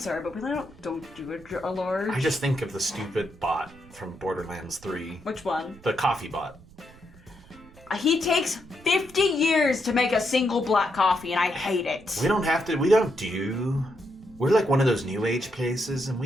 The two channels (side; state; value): right; noise; rumble, 23 dB below the sound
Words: but we don't do a large. I just think of the stupid bot from Borderlands 3. Which one? The coffee bot. He takes 50 years to make a single black coffee, and I hate it. We don't do. We're like one of those new age places, and